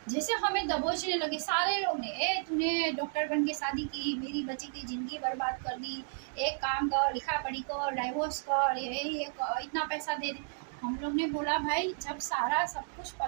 जैसे हमें दबोचने लगे सारे लोग ने। ए तूने डॉक्टर बन के शादी की, मेरी बच्ची की जिंदगी बर्बाद कर दी, एक काम कर, लिखा पढ़ी कर, डाइवोर्स कर, ये इतना पैसा दे दे। हम लोग ने बोला भाई जब सारा सब कुछ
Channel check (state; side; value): silent; left; digital silence